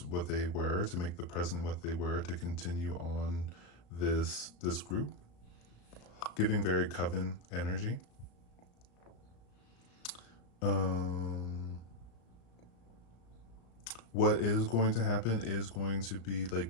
what they were, to make the present what they were, to continue on this group, giving very coven energy. What is going to happen is going to be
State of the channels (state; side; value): late; right; 34 ms